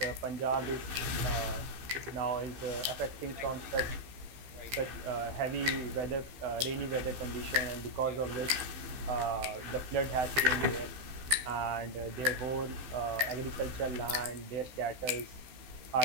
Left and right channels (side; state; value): left; late; 15 ms